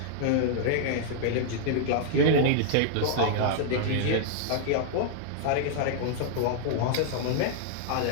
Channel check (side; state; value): both; different; correlation -0.01